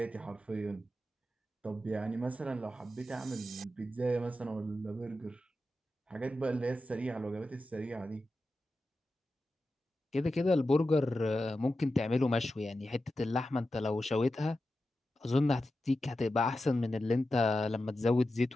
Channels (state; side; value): normal; both; correlation 0.91